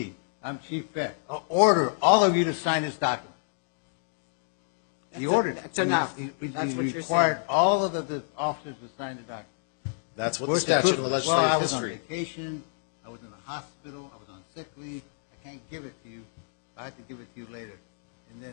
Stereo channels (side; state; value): right; silent; digital silence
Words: I'm Chief Beck. I'll order all of you to sign this document. He ordered it. That's enough. He That's what you're required saying. all of the officers to sign the document. That's what the Where's the statute proof and of the it? Well, I legislative was on history. vacation. I was in a hospital. I was on sick leave. I can't give it to you. I have to give it to you later. And